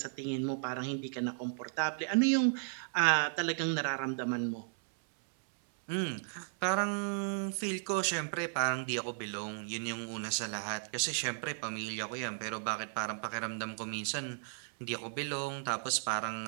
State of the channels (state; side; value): silent; left; 55 dB below the other